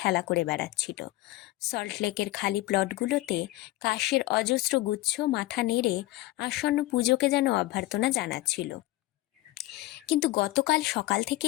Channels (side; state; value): right; quieter; 17.8 dB